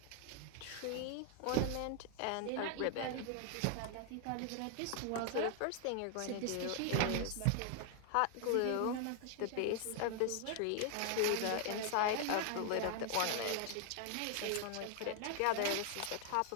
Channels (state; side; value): different; both; correlation 0.00